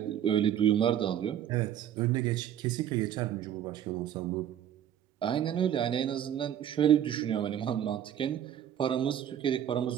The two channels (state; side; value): quieter; left; 10.3 dB